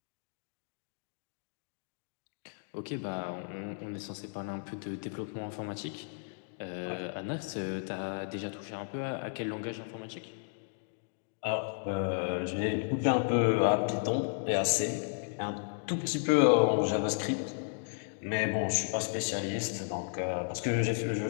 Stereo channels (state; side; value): silent; right; digital silence